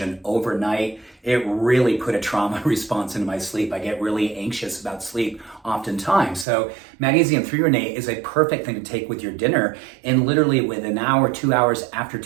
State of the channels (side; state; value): left; drops out; at 6.5 s